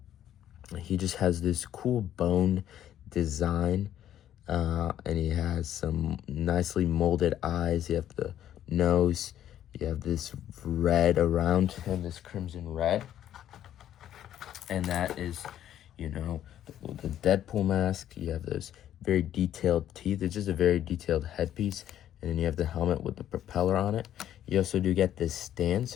He just has this cool bone design. And he has some nicely molded eyes. You have the nose. You have this red around him, this crimson red. And that is, you know, the Deadpool mask. You have those very detailed teeth. It's just a very detailed headpiece. And then you have the helmet with the propeller on it. You also do get this stand.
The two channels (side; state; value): right; quieter; 11.2 dB